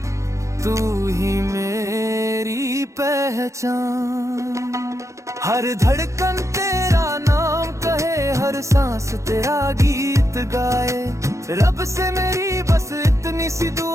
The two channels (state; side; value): late; left; 0.15 ms